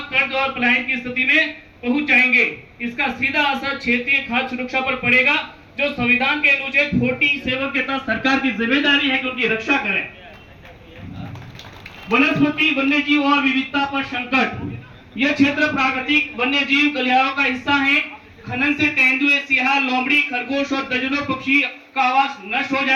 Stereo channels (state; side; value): identical; both; correlation 1.00